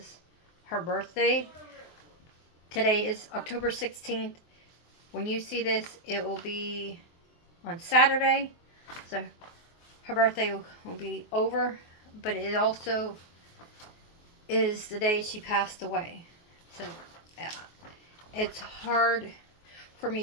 her birthday. Today is October 16th. When you see this, it will be on Saturday. So her birthday will be over, but it also is the day she passed away. So it's hard for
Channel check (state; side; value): late; right; 23 ms